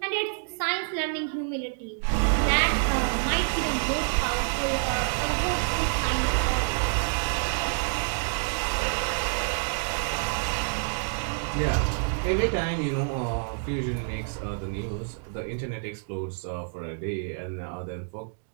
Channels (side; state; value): left; silent; 60 dB below the other